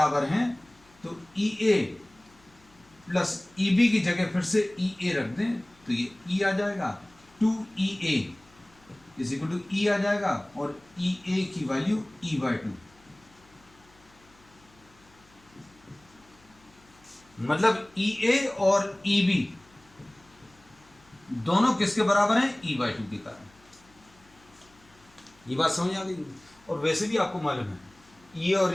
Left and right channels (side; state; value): left; noise; hum, 29 dB below the sound